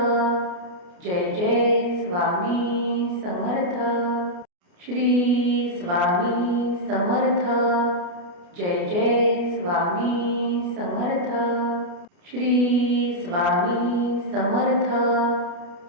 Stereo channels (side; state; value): left; late; 29 ms